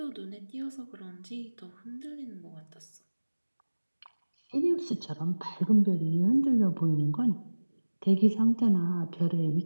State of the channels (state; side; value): inverted; both; correlation -1.00